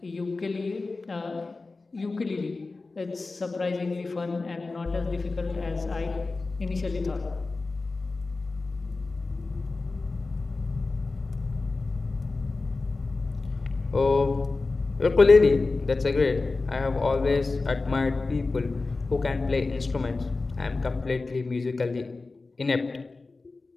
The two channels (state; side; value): quieter; right; 3.6 dB